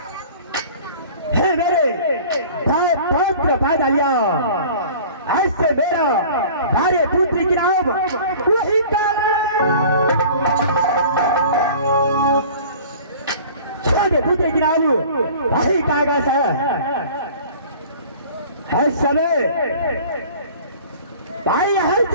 है मेरे पौत्र पैदा लिया, ऐसे मेरा भार्य पुत्री की नाम वही छोटे पुत्री की नाम वही कागज है समय भाई हल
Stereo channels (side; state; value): both; inverted; correlation -0.44